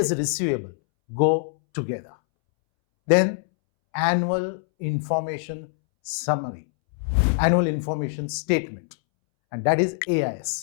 receivable go together. Then annual information summary, annual information statement, and that is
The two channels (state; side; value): silent; right; 63 dB below the other